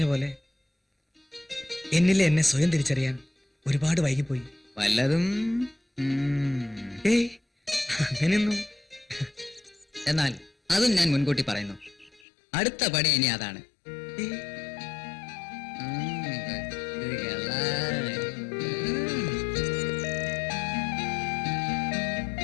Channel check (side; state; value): right; drops out; at 12.2 s